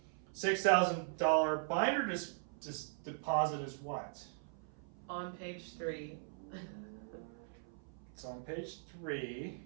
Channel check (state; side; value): silent; left; 51 dB below the other